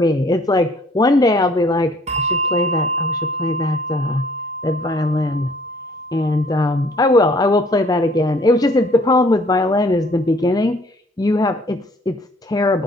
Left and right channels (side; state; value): both; normal; correlation 0.58